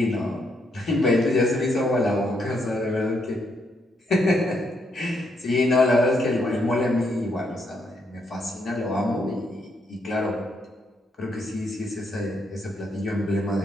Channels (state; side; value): normal; both; correlation 0.76